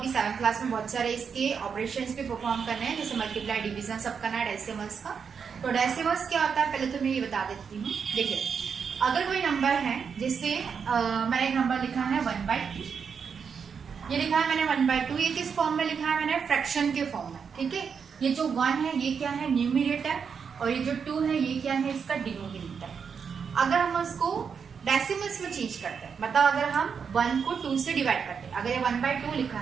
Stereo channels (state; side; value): quieter; left; 6.4 dB